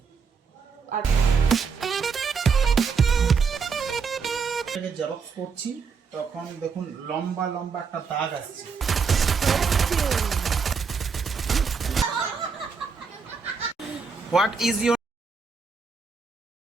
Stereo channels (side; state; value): left; quieter; 5.4 dB